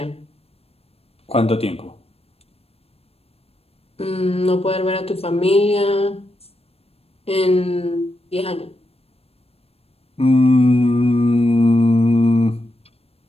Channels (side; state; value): right; late; 0.28 ms